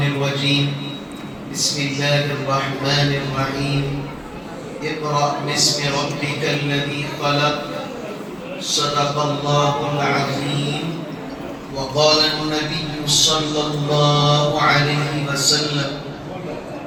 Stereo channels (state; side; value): identical; both; correlation 1.00